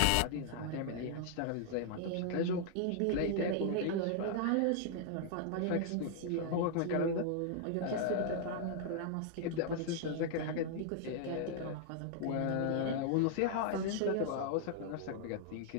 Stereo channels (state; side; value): different; both; correlation -0.01